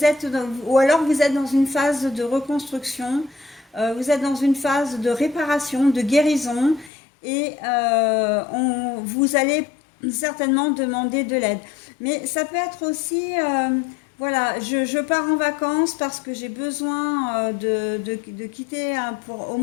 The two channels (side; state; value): right; drops out; at 6.9 s